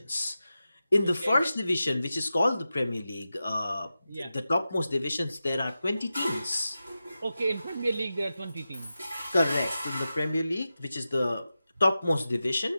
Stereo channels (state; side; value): inverted; both; correlation -0.92